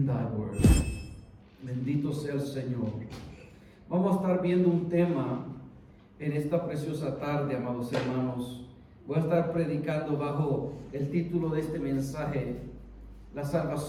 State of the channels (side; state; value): both; identical; correlation 1.00